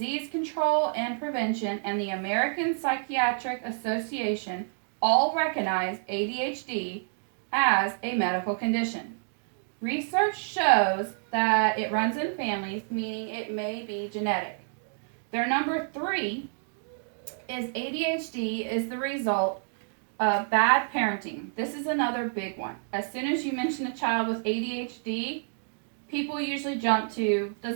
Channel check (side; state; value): left; silent; digital silence